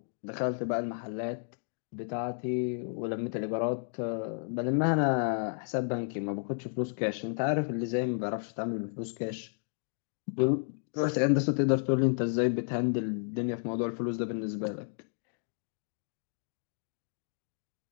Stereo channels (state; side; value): silent; right; 56 dB below the other